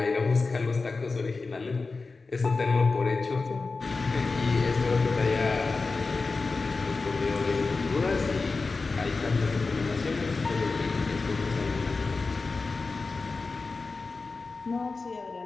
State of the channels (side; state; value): right; quieter; 4.0 dB